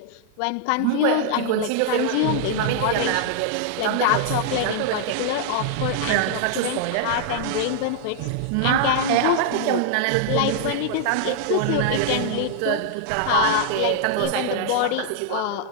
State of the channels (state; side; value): different; both; correlation -0.01